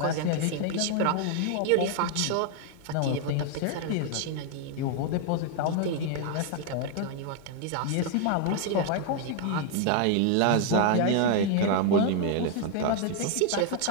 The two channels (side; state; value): both; different; correlation 0.00